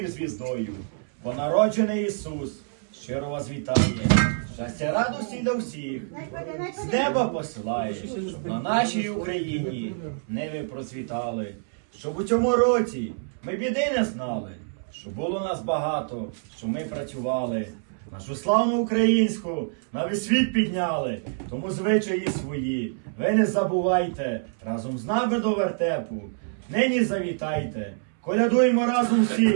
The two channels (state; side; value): silent; left; 61 dB below the other